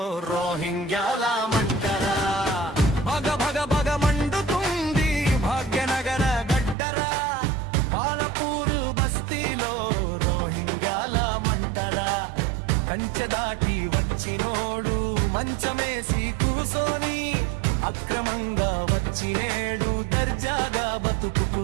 రోహింగ్యాల మంటరా. భగ భగ భగ మండుతుంది భాగ్యనగర గడ్డరా, బాలపూర్ బస్తీలో రోహింగ్యాల మంటరా. కంచె దాటి వచ్చినోడు మంచమేసి కూసోని, అక్రమంగా వచ్చినేడు దర్జాగా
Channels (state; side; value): drops out; left; at 6.8 s